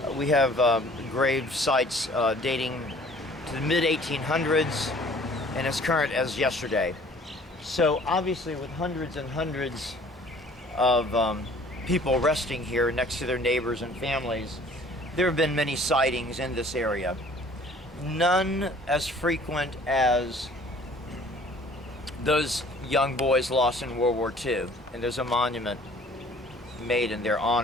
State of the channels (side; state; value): both; normal; correlation 0.52